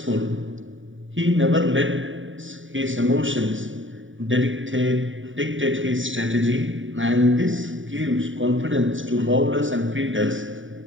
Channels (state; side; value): late; left; 0.57 ms